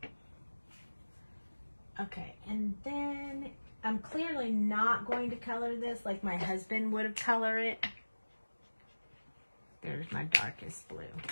Okay, and then I'm clearly not going to color this like my husband would have colored it. There's my darkest blue.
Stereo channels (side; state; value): both; inverted; correlation -1.00